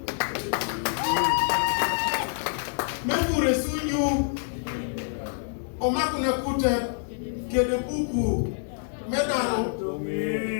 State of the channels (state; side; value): silent; right; digital silence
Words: mekure sunyu omakuna kuta kede buku medaro